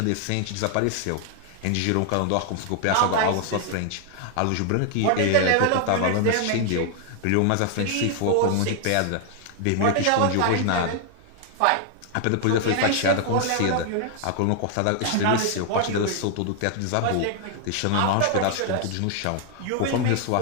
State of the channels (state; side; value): different; both; correlation 0.00